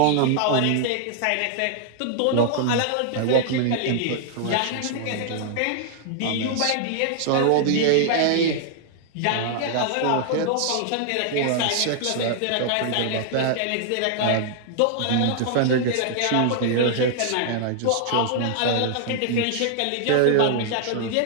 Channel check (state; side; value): different; both; correlation -0.01